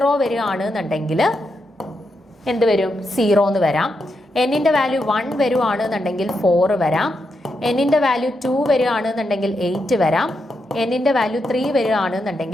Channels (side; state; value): both; normal; correlation 0.84